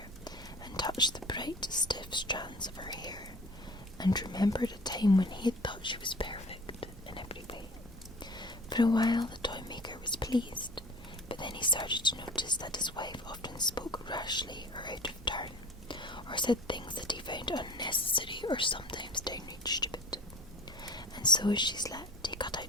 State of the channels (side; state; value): both; normal; correlation 0.46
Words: and touched the bright, stiff strands of her hair, and remembered a time when he had thought she was perfect in every way. For a while the toy maker was pleased, but then he started to notice that his wife often spoke rashly or out of turn, or said things that he found unnecessary or sometimes downright stupid. And so as she slept, he cut